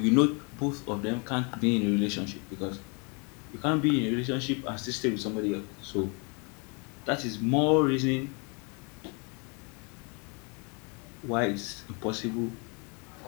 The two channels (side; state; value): right; quieter; 33.8 dB